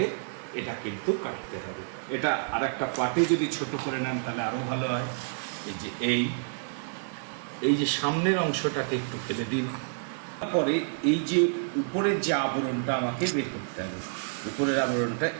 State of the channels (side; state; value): left; silent; digital silence